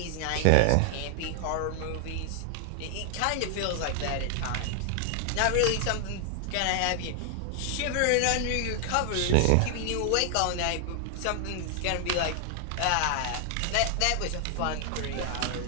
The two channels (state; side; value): different; both; correlation 0.00